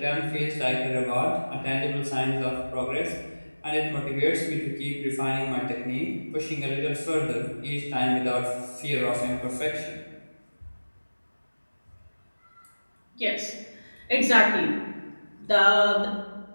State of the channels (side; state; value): both; inverted; correlation -1.00